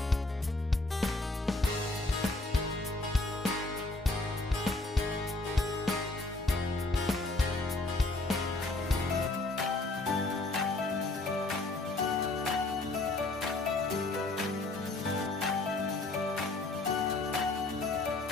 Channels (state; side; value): quieter; right; 3.0 dB